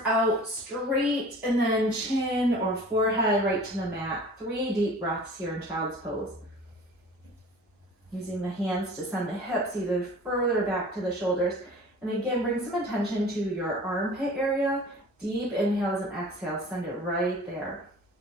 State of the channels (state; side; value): normal; both; correlation 0.44